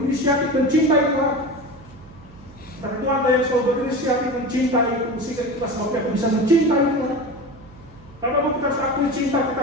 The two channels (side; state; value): right; noise; hum, 22 dB below the sound